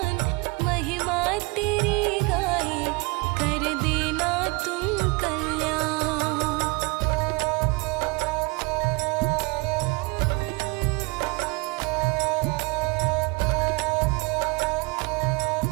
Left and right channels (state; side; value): quieter; left; 26.7 dB